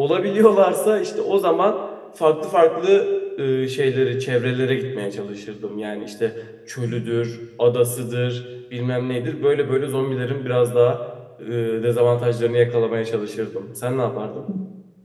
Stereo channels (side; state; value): both; identical; correlation 1.00